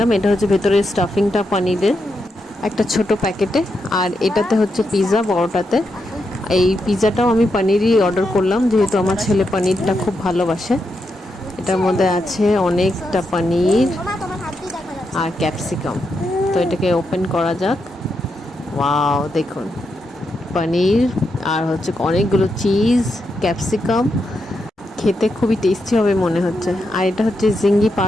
এটা হচ্ছে ভেতরের স্টাফিংটা পনিরের একটা ছোট প্যাকেটে, আর এটাতে হচ্ছে পিৎজা বড়টাতে। এই পিৎজাটাও আমি পনিরই অর্ডার করলাম, যেহেতু আমার ছেলে পনিরটা খুব ভালোবাসে। এটার মধ্যে আছে অনেকটা পনির আর ক্যাপসিকাম। তো এটাকে ওপেন করা যাক। ওয়াও, দেখুন পনির আর হচ্ছে অনেকগুলো চিজ, ক্যাপসিকাম। খেতে খুবই টেস্টি হবে মনে হচ্ছে। আর এটা হচ্ছে জিঙ্গি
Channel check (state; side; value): normal; both; correlation 0.84